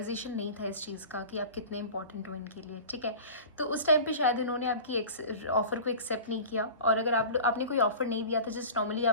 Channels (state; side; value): inverted; both; correlation -0.37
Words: नहीं था इस चीज़ का कि आप कितने इंपॉर्टेंट हो इनके लिए। ठीक है, तो उस टाइम पे शायद इन्होंने आपकी ऑफ़र को एक्सेप्ट नहीं किया। और अगर आपने कोई ऑफ़र नहीं दिया था, जस्ट नॉर्मली